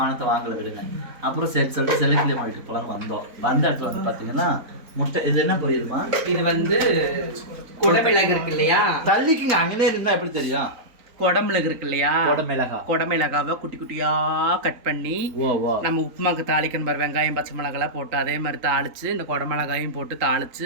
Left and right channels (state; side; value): late; left; 4.0 ms